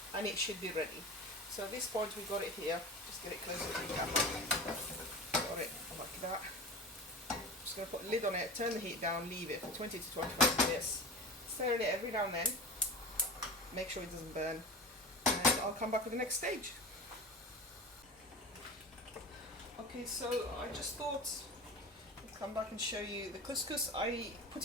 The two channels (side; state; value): both; normal; correlation 0.31